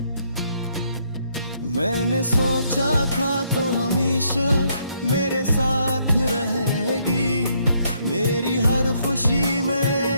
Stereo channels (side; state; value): both; inverted; correlation -0.72